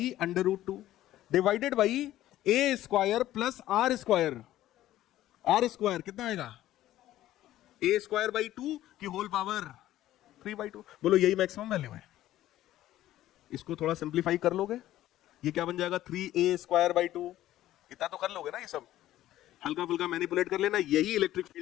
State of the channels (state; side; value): quieter; right; 14.0 dB